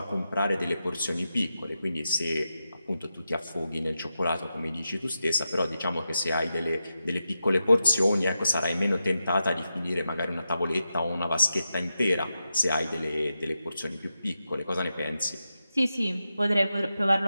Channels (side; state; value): both; inverted; correlation -0.89